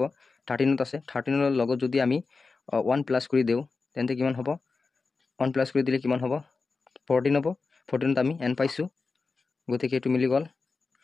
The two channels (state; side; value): quieter; right; 4.3 dB